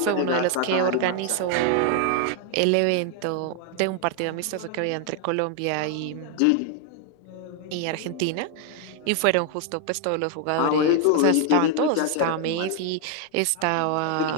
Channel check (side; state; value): both; different; correlation 0.00